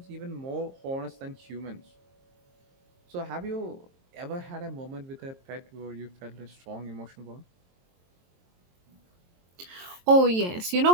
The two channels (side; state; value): left; late; 22 ms